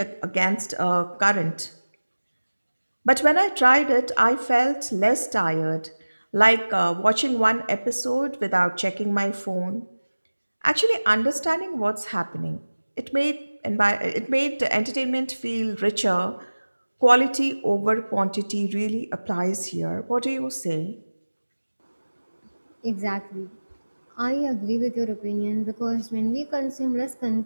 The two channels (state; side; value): inverted; both; correlation -1.00